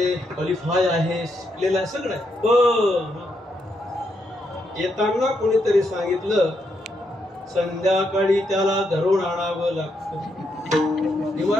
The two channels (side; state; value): both; normal; correlation 0.79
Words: क्वालिफाय आहे, शिकलेला आहे, सगळं आहे. पण येताना कोणीतरी सांगितलं संध्याकाळी त्याला धरून आणावं लागतं.